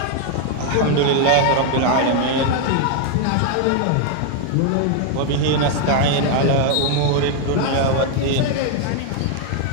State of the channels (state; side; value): different; both; correlation 0.00